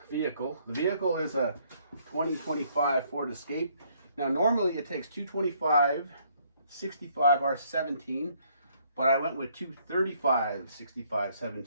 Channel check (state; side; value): inverted; both; correlation -0.66